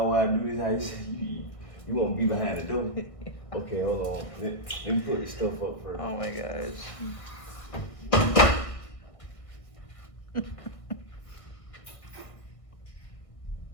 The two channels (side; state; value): right; late; 1.6 ms